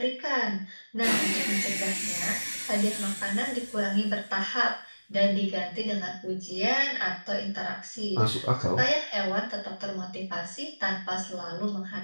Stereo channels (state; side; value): inverted; both; correlation -1.00